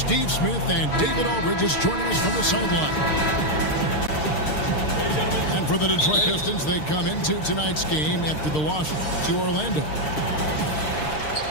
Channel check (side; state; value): right; late; 6.5 ms